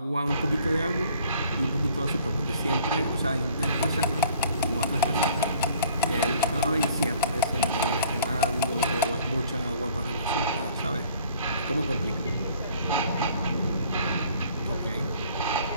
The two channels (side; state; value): both; inverted; correlation -0.54